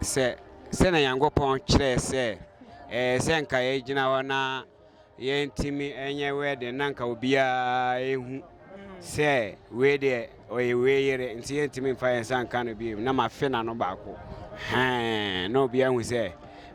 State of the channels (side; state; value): both; identical; correlation 1.00